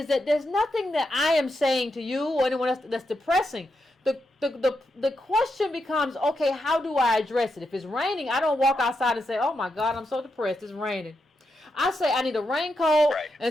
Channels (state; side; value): normal; both; correlation 0.85